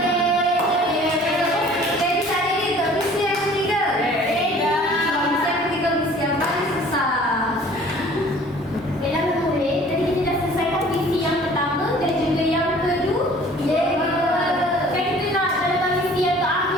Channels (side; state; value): both; normal; correlation 0.51